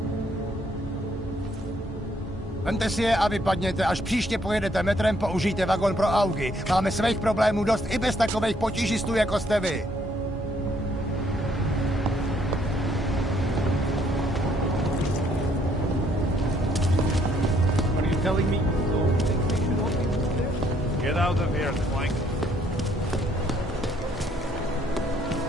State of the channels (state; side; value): normal; both; correlation 0.67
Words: Vemte si je a vypadněte. Až příště pojedete metrem, použijte vagon pro augy. Máme svých problémů dost i bez takových potížistů, jako jste vy. What are you telling me? Get out of here, Clank.